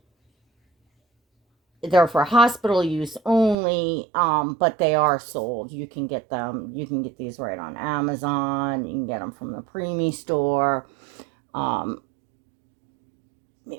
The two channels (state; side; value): drops out; left; at 3.6 s